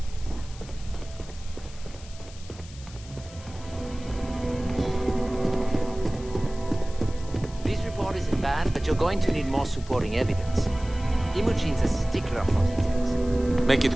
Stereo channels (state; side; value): noise; left; hiss, 19 dB below the sound